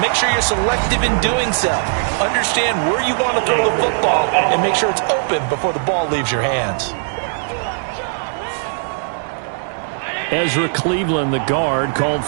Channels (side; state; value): left; silent; digital silence